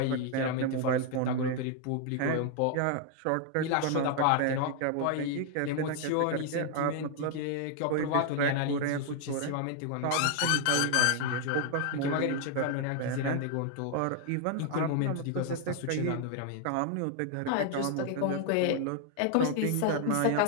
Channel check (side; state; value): both; different; correlation 0.00